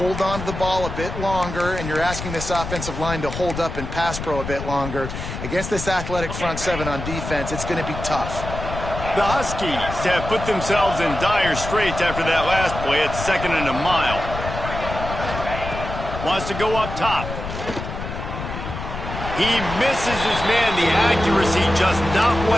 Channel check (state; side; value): noise; left; rumble, 7 dB below the sound